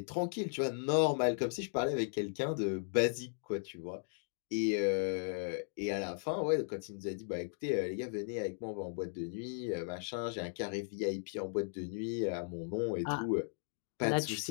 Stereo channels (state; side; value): silent; right; digital silence